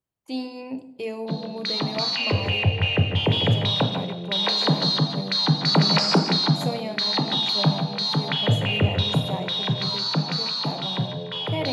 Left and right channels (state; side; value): identical; both; correlation 1.00